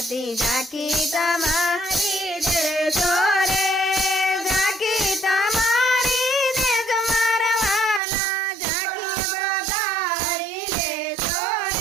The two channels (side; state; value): left; drops out; at 8.0 s